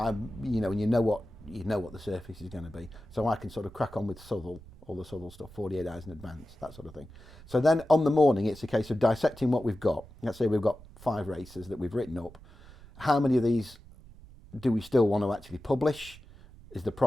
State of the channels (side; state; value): right; noise; rumble, 20 dB below the sound